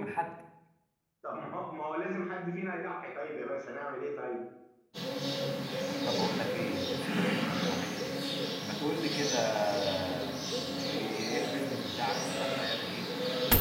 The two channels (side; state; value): both; identical; correlation 1.00